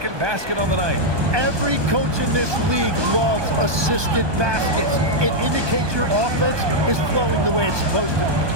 basket on the night. Every coach in this league loves assisted baskets. It indicates your offense is flowing the way it's supposed to.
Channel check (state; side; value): late; left; 1.2 ms